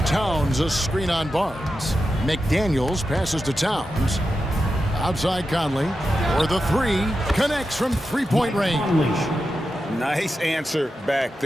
Towns a screen on Barnes. McDaniels passes to Towns. Outside Conley. For the 3. Connects from 3-point range. Nice answer back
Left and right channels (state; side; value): normal; both; correlation 0.90